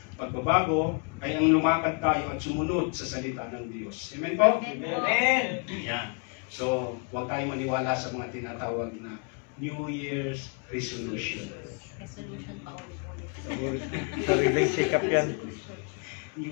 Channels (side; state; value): right; quieter; 37.1 dB